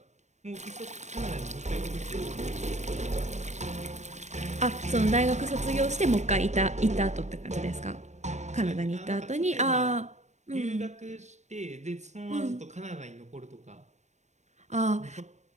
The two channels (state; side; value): late; left; 0.34 ms